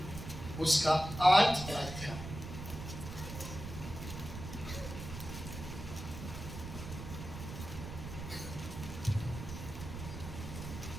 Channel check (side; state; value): right; noise; rumble, 8 dB below the sound